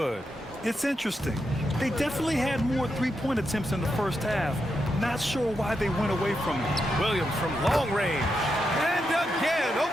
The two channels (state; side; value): normal; both; correlation 0.85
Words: It's interesting. They definitely had more three-point attempts in the first half. Not sure why they went away from it. Williams from long range. And again,